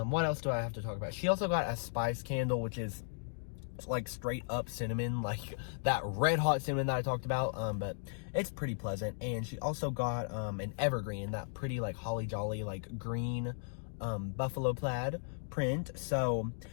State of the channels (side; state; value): right; silent; digital silence